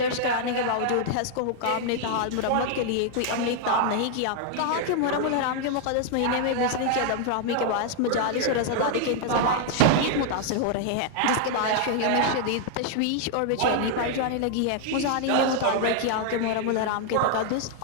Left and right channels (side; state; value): both; different; correlation 0.00